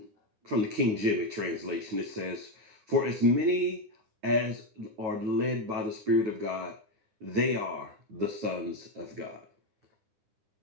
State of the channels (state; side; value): late; left; 9.3 ms